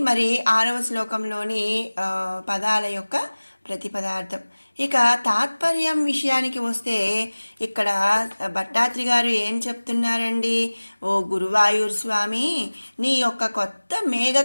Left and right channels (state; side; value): inverted; both; correlation -1.00